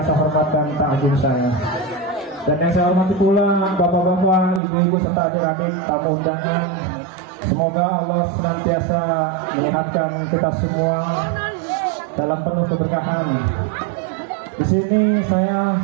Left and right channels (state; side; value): drops out; left; at 4.6 s